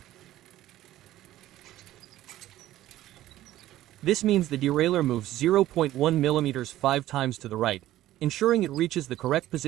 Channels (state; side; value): quieter; left; 14.4 dB